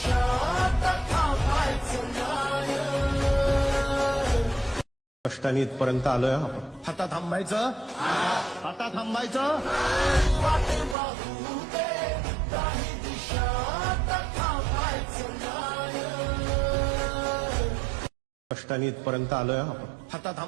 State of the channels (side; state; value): left; drops out; at 11.0 s